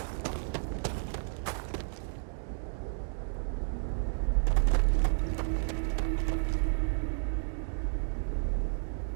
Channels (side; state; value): left; silent; digital silence